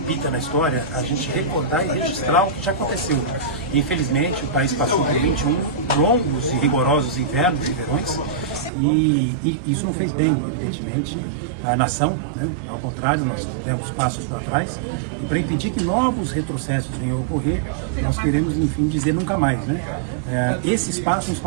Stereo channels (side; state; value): left; drops out; at 8.7 s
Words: na história, a gente recordar e registrar o que já aconteceu. Infelizmente, o país passou por 21 longos e rigorosos invernos e verões, e isso não fez bem, evidentemente, à nação, né? Ao contrário, nós demos passos para trás, e para impedir que novos retrocessos venham a ocorrer, nós queremos, enfim, dizer nunca mais, né? Esse espaço é um